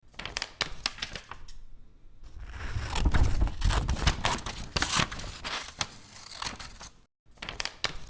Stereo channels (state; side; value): identical; both; correlation 1.00